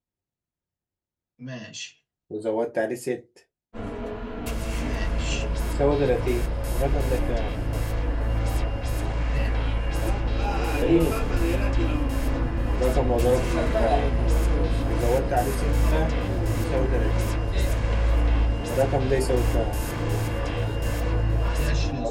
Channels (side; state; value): both; identical; correlation 1.00